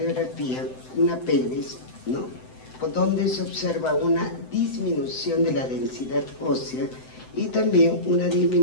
una pelvis, donde se observa una disminución de la densidad ósea y también una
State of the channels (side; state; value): right; late; 7.8 ms